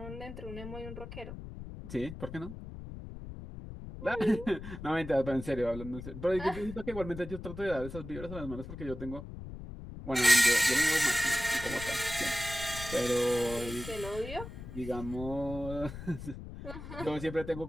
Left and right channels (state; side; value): noise; left; rumble, 10 dB below the sound